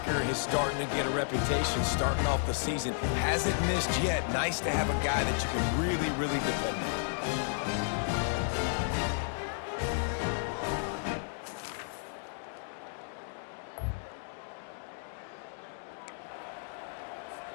is starting to get a reputation starting off the season. Hasn't missed yet. Nice to have a guy that you can really, really depend on.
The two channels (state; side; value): silent; right; digital silence